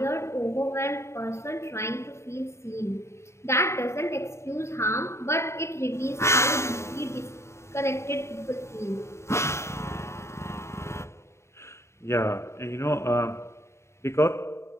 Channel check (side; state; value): right; late; 0.13 ms